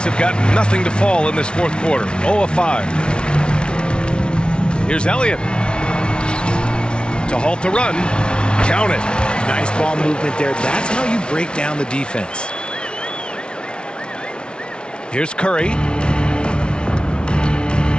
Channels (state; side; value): late; right; 0.056 ms